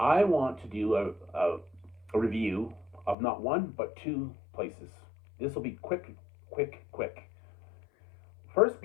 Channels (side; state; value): right; drops out; at 3.2 s